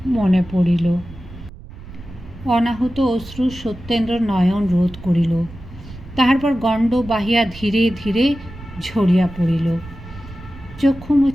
মনে পড়িল। অনাহুত অশ্রু সত্যেন্দ্র নয়ন রোধ করিল। তাহার পর গণ্ড বাহিয়া ধীরে ধীরে ঝরিয়া পড়িল। চক্ষু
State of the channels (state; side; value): noise; right; rumble, 16 dB below the sound